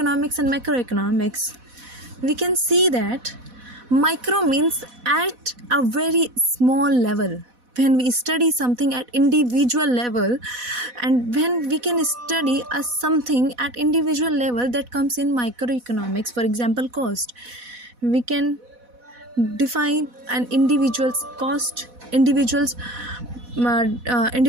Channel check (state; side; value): late; left; 4.1 ms